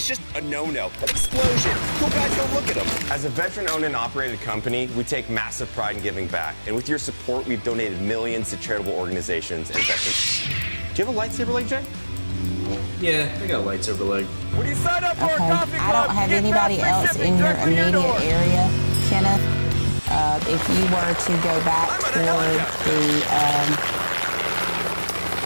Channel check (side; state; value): both; inverted; correlation -1.00